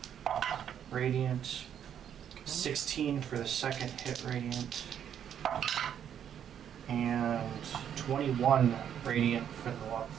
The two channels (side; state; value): left; quieter; 9.2 dB